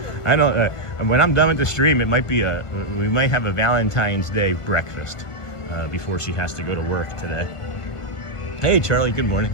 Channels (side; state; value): right; late; 1.5 ms